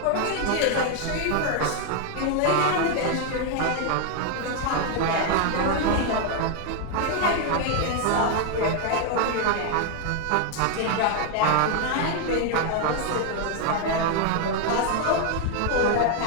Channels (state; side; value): different; both; correlation 0.00